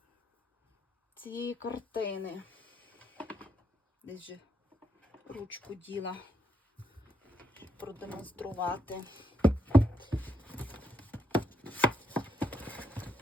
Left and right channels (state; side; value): normal; both; correlation 0.77